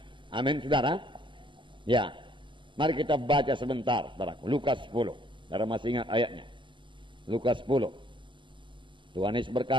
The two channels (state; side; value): late; left; 0.24 ms